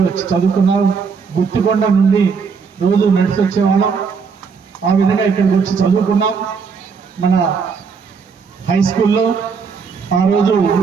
వచ్చి చదువుకున్నాను. గుత్తికొండ నుండి రోజు నడిచి వచ్చేవాళ్ళం. ఆ విధంగా ఇక్కడికి వచ్చి చదువుకున్నాం. మన హై స్కూల్లో ఆ రోజు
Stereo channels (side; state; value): left; quieter; 5.6 dB